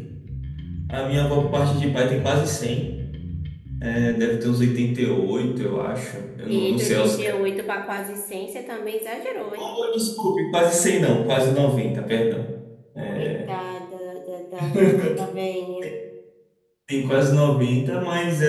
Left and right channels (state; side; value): identical; both; correlation 1.00